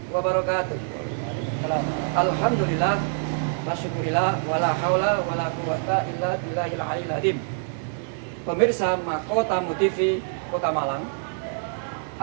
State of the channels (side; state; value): left; silent; digital silence